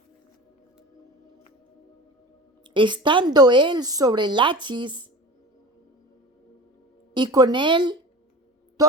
Estando él sobre Lachis y con él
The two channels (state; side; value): normal; both; correlation 0.35